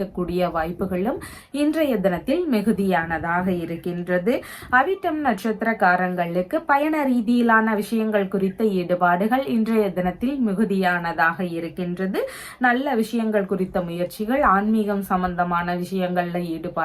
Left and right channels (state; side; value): identical; both; correlation 1.00